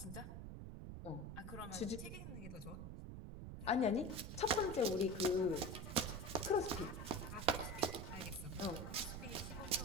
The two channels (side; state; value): right; noise; rumble, 8 dB below the sound